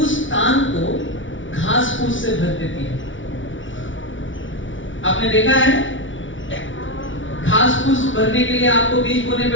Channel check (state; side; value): late; right; 0.56 ms